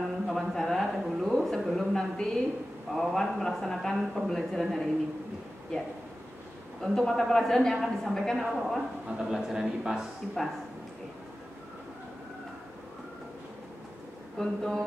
wawancara dahulu sebelum nanti Pak Wawan melaksanakan pembelajaran hari ini. Ya. Untuk mata pelajaran yang akan disampaikan apa Pak Wawan? Mata pelajaran IPAS. IPAS.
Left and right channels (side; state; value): both; normal; correlation 0.95